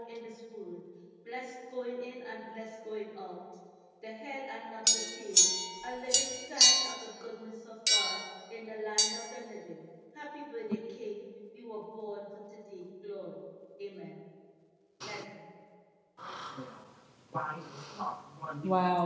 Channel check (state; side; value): identical; both; correlation 1.00